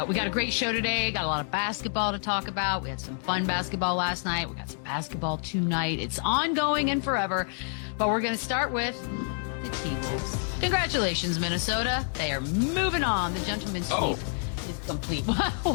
we got a great show today. Got a lot of basketball to talk about. We had some fun basketball last night. We got some basketball tonight. It's ongoing and forever. But we're going to start with the T-Wolves. Congratulations, Minnesota. They are moving on. The gentleman's sweep is complete.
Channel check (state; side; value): silent; right; 59 dB below the other